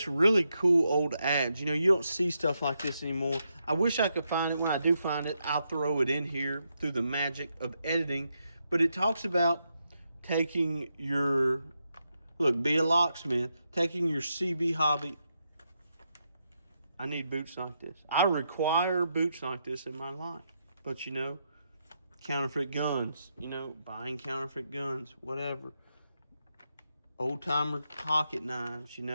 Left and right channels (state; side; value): inverted; both; correlation -0.82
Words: really cool old ads. You know, you don't see stuff like this anymore. I wish I could find it. When I do find it, I'll throw it in here through the magic of editing. But it talks about taking your, look, be a locksmith, taking your CB hobby. I need boots like this. I require boots like this in my life. But, you know, counterfeit guns, you know, buying counterfeit guns, whatever. Old-timer pocket knives, you